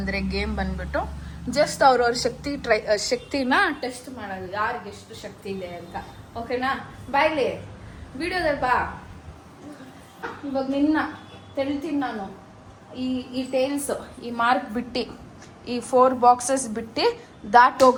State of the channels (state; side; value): identical; both; correlation 1.00